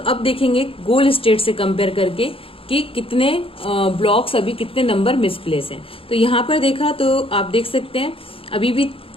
अब देखेंगे गोल स्टेट से कंपेयर करके कि कितने ब्लॉक्स, अभी कितने नंबर मिसप्लेस हैं। तो यहाँ पर देखा तो आप देख सकते हैं अभी भी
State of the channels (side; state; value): right; late; 0.27 ms